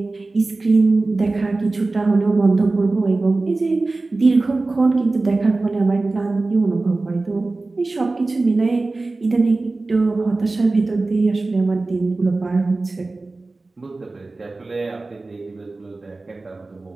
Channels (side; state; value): left; quieter; 3.3 dB